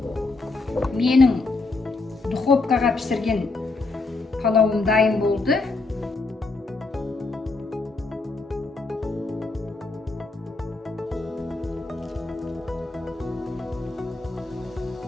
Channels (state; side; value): quieter; right; 3.5 dB